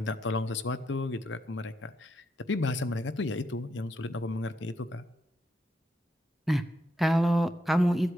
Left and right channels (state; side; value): normal; both; correlation 0.80